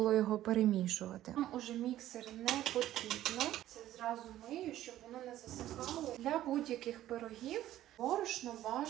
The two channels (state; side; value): quieter; left; 13.4 dB